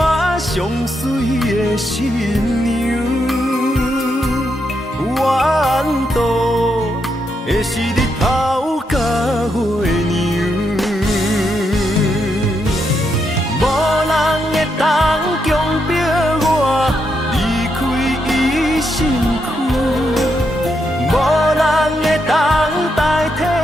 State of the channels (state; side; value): normal; both; correlation 0.81